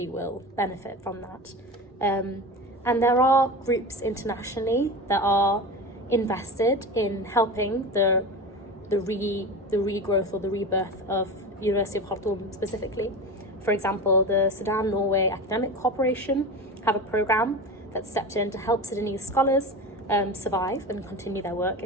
will benefit from that. And there are groups internationally that are invested in helping the regrowth or the rebirth of University of Khartoum specifically. For example, the Sudan-Norway Academic Cooperation have a program that stepped in to help Sudanese scholars survive and continue their work,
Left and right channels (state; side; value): normal; both; correlation 0.28